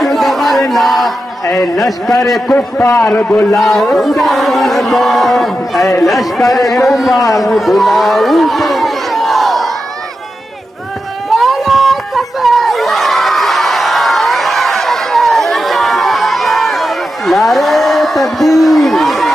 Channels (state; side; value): normal; both; correlation 0.89